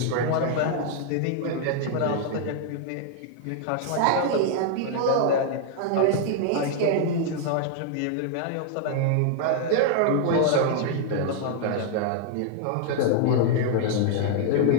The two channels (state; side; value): different; both; correlation 0.00